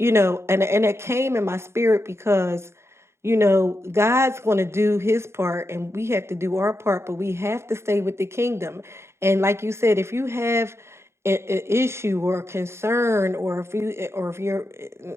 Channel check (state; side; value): late; left; 0.13 ms